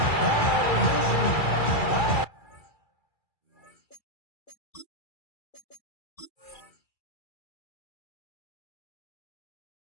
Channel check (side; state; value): right; late; 2.3 ms